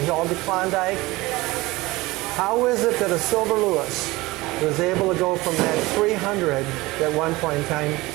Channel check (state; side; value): quieter; left; 20.6 dB